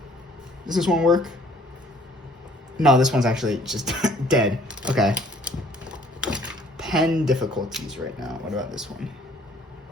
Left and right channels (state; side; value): normal; both; correlation 0.57